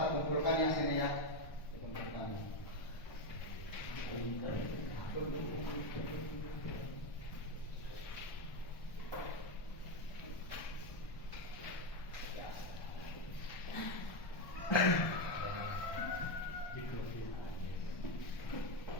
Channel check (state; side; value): late; right; 1.3 ms